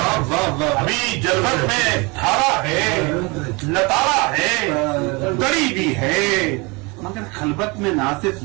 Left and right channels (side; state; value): left; quieter; 27.4 dB